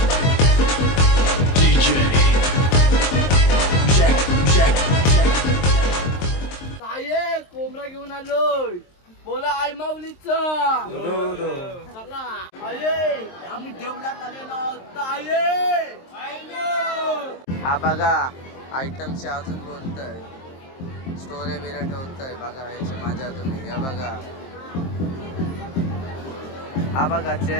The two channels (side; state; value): right; late; 23 ms